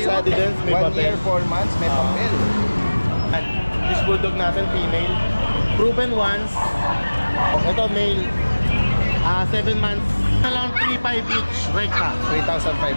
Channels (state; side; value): inverted; both; correlation -1.00